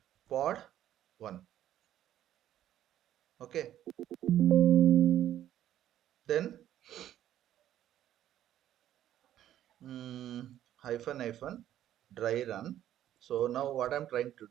pod 1. Okay, then hyphen hyphen dry run. So now what I'm trying to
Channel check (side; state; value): left; quieter; 11.9 dB